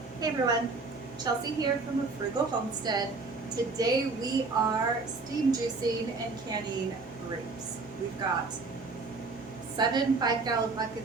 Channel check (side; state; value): left; quieter; 3.9 dB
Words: Hey everyone, Chelsea here from A Frugal Homestead. Today we are steam juicing and canning grapes. We've got 7 5-gallon